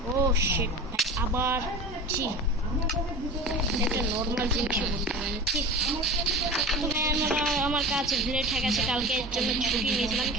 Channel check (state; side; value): normal; both; correlation 0.33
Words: ও শিট ভাই আবার জি একটা নর্মাল জিনিস বলতে পারেন ঠিক আমার কাছে ভিলেট হয়ে গেছে কালকের জন্য ছুটি নিয়েছিলাম